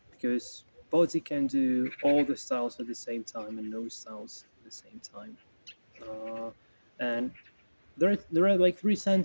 because body can do all the styles at the same time and no styles at the same time. Uh, and there are like three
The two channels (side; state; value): both; inverted; correlation -1.00